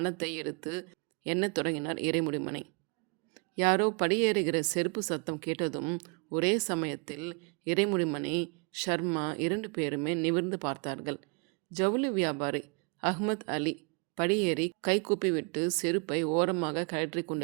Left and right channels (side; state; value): left; quieter; 35.3 dB